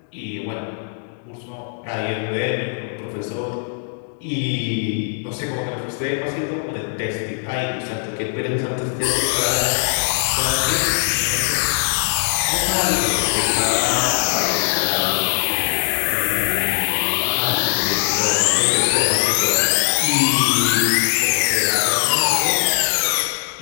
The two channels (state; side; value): silent; right; digital silence